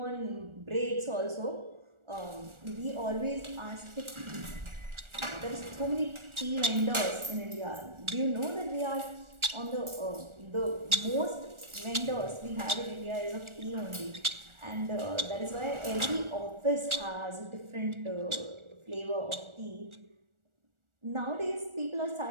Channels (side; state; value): left; late; 1.4 ms